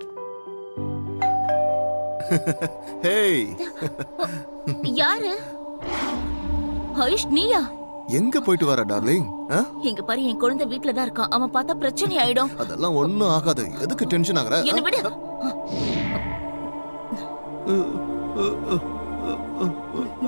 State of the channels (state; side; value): inverted; both; correlation -1.00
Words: ஹேய், யாரு? ஆயுஷ் நீயா? எங்க போயிட்டு வர டார்லிங்? இங்க பாரு, என் குழந்தை வீட்ல தான் இருக்கான். அவன் பார்த்தா பிரச்சனை ஆயிடும். அதெல்லாம் ஒண்ணும் ஆகாது. எதுக்கு டென்ஷன் ஆகுற? என்ன விடு.